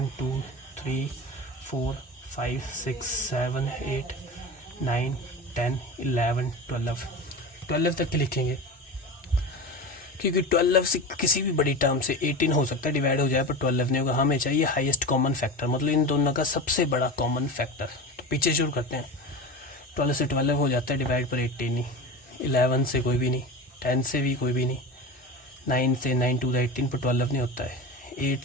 2 3 4 5 6 7 8 9 10 11 12 तक के लिखेंगे, क्योंकि 12 से किसी भी बड़ी टर्म से 18 हो सकता है डिवाइड हो जाए, पर 12 नहीं होगा। हमें चाहिए हाईएस्ट कॉमन फैक्टर, मतलब इन दोनों का सबसे बड़ा कॉमन फैक्टर। तो पीछे शुरू करते हैं। 12 से 12 हो जाता है डिवाइड, पर 18 नहीं। 11 से कोई भी नहीं, 10 से भी कोई भी नहीं, 9 से 9 2 द 18 पर 12 नहीं होता है। 8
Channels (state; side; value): normal; both; correlation 0.28